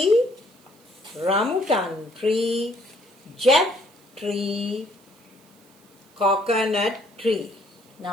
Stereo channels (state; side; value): noise; right; hiss, 30 dB below the sound